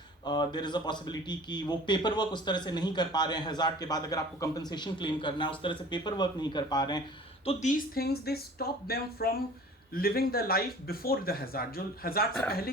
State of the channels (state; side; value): normal; both; correlation 0.45